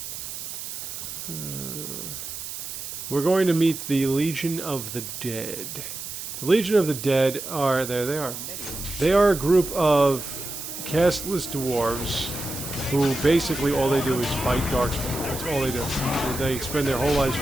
We're going to meet the Legion of the Dead. The Legion of the Dead are... There they are. They are a group of castless dwarves who basically all they do is fight Darkspawn. That's all they do. They spend their whole lives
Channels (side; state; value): right; noise; hiss, 8 dB below the sound